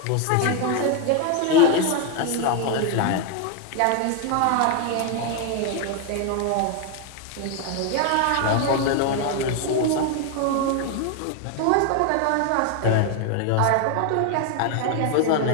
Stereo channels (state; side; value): different; both; correlation 0.01